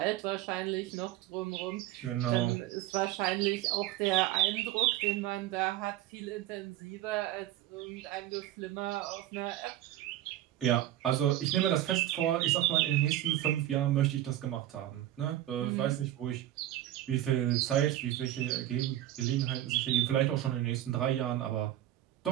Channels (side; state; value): left; quieter; 13.6 dB